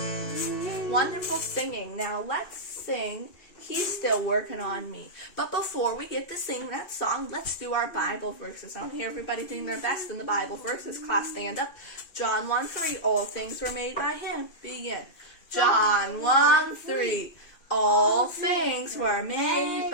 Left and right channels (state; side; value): late; right; 2.5 ms